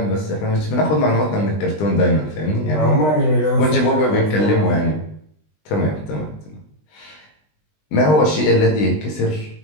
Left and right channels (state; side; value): late; right; 20 ms